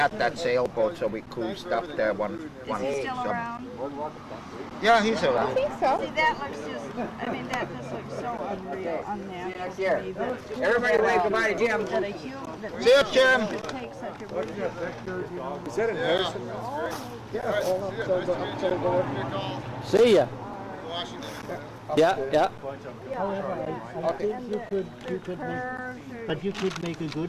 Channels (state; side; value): identical; both; correlation 1.00